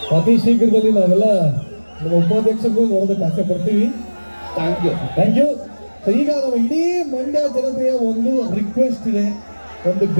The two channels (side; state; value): both; inverted; correlation -1.00